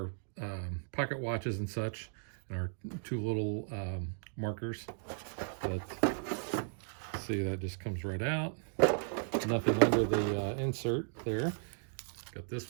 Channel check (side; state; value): left; silent; digital silence